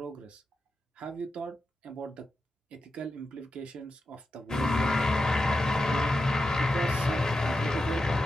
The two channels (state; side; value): normal; both; correlation 0.90